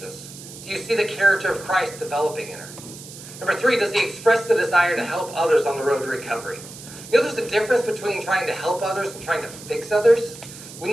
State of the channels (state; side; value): noise; right; hiss, 15 dB below the sound